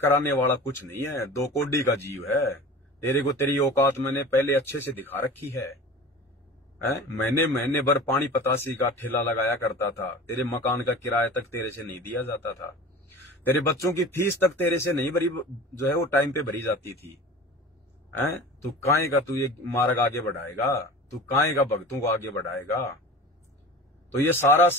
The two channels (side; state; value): both; normal; correlation 0.37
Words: वाला कुछ नहीं है, 2 कोड़ी का जीव है। तेरे को तेरी औकात मैंने पहले अच्छे से दिखा रखी है। महीने भर पानी पतासी का ठेला लगाया करता था, तेरे मकान का किराया तक तेरे से नहीं दिया जाता था, तेरे बच्चों की फीस तक तेरे से नहीं भरी, जो है वो टाइम पे भरी जाती थी। तू काहे का तू ये मार्ग आगे बढ़ाएगा, तू काहे का भक्तों को आगे बढ़ाएगा। तो ये सारा